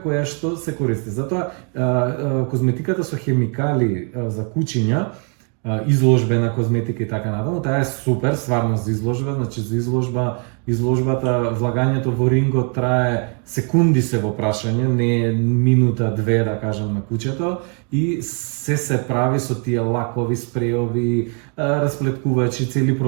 која што се користи. Затоа козметиката со хемикали за кучиња, изложбена козметика и така натаму, таа е супер стварно за изложба, значи за изложбата, влагањето во рингот трае секунди се во прашање, не е минута, две да кажам на кучето, и се прави со тие лакови, спреови, расплеткувачи, цели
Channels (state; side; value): quieter; left; 39.0 dB